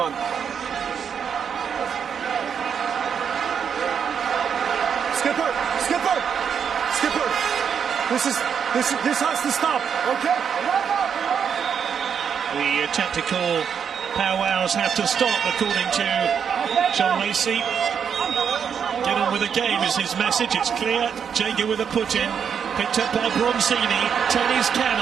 on. Skipper! Skipper! Skipper! This has to stop, okay? The tactical powwows have to stop, according to John Lacey. Get on with the game is his message. It's clear. Jager with a put in. Picked up by Bronzini. Tony's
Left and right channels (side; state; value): left; quieter; 7.4 dB